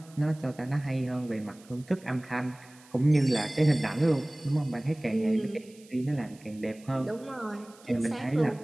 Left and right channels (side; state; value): right; noise; hiss, 25 dB below the sound